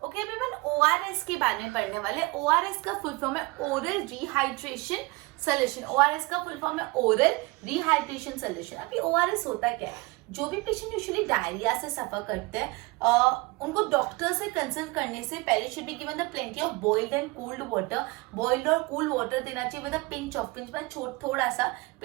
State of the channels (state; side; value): quieter; left; 24.4 dB